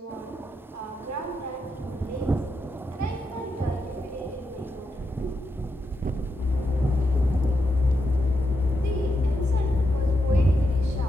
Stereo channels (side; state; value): both; normal; correlation 0.84